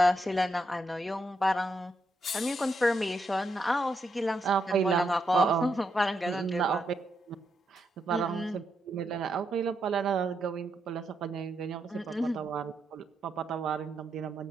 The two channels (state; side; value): normal; both; correlation 0.81